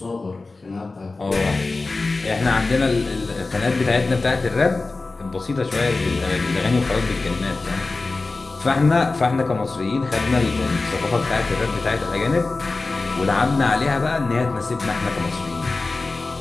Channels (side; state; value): right; quieter; 3.6 dB